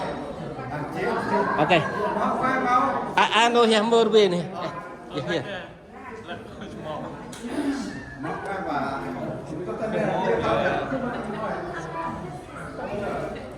Okay. I know him more way này. Yeah, yeah.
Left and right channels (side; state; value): both; identical; correlation 1.00